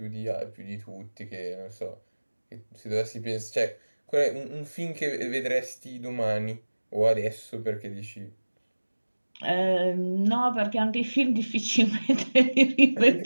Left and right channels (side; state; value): both; inverted; correlation -1.00